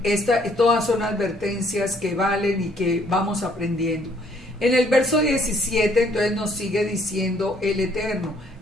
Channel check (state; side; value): normal; both; correlation 0.64